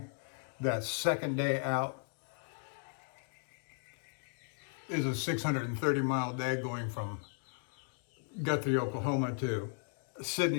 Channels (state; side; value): silent; right; 54 dB below the other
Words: that second day out is a 630 mile day going from Guthrie, Oklahoma to